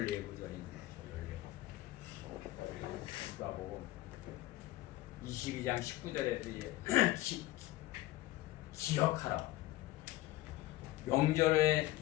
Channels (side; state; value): right; quieter; 16.9 dB